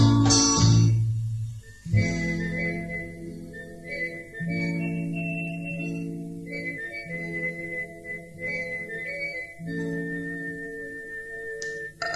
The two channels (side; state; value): both; identical; correlation 1.00